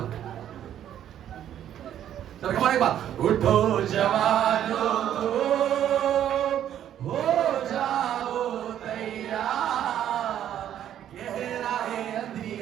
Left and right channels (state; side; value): quieter; left; 10.7 dB